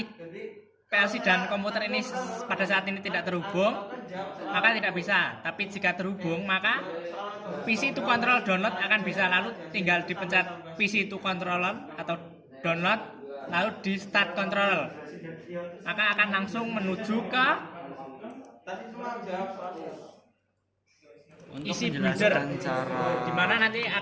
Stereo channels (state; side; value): identical; both; correlation 1.00